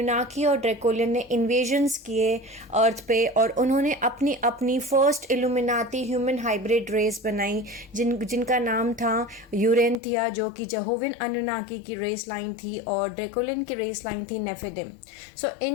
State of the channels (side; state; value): right; drops out; at 10.0 s